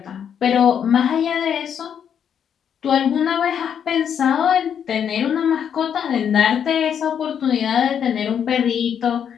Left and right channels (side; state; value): right; quieter; 8.3 dB